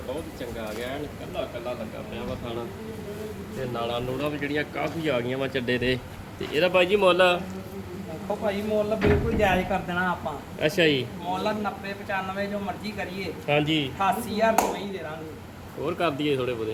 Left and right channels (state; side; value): identical; both; correlation 1.00